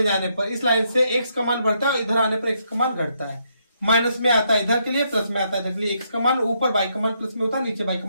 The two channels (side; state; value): both; inverted; correlation -0.76